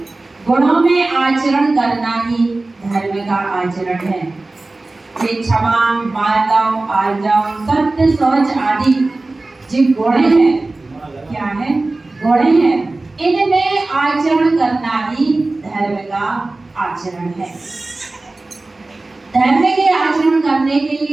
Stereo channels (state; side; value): quieter; left; 3.1 dB